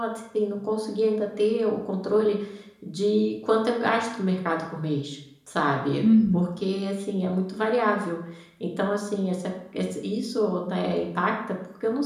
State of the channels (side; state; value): both; identical; correlation 1.00